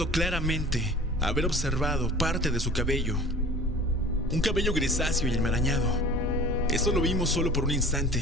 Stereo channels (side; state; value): both; normal; correlation 0.43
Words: claramente haber observado parte de su cabello, un cabello grisáceo y enmarañado. Eso lo vimos solo por un